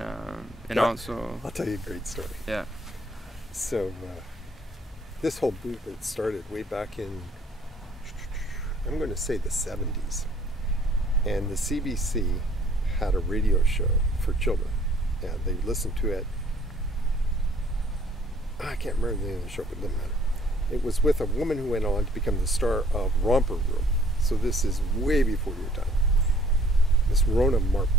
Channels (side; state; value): both; normal; correlation 0.59